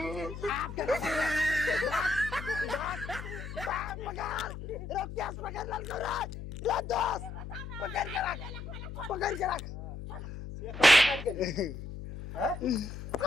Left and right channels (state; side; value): noise; left; hum, 9 dB below the sound